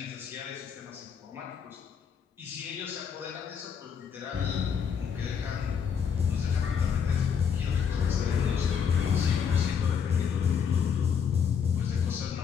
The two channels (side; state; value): right; quieter; 7.1 dB